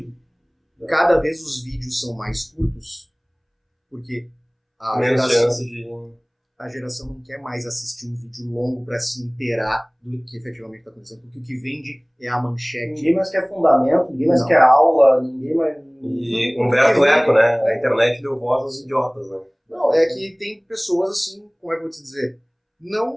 cada vez os vídeos são mais curtos, porque a geração não quer mais assistir um vídeo longo para se inteirar do que efetivamente está acontecendo, porque o que vende é a manchete. Ninguém mais quer fundamento, ninguém mais quer aula, ninguém mais... E Humberto Eco, né? A internet deu voz aos idiotas, né? Não, é que tem pessoas assim, como é que eu vou te dizer,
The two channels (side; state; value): both; identical; correlation 1.00